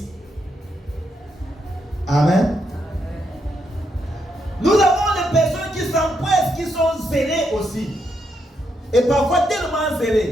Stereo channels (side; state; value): both; normal; correlation 0.79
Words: Amen. Nous avons des personnes qui s'empressent, qui sont zélées aussi. Et parfois tellement